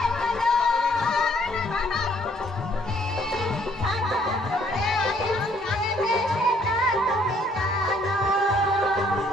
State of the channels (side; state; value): both; normal; correlation 0.64